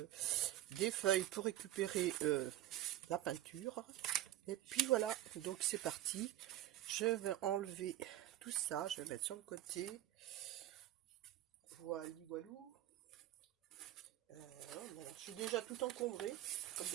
des feuilles pour récupérer la peinture. Et puis voilà, donc c'est parti. Je vais enlever tout ça, je vais mettre sur le côté. Voilà, voilou. Je suis déjà tout encombré, comme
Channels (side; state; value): left; quieter; 13.9 dB